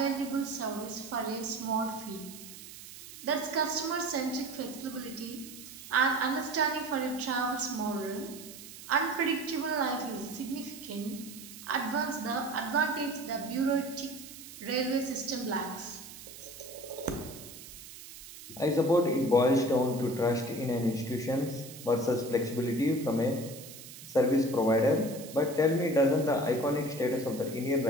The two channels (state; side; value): noise; right; hiss, 15 dB below the sound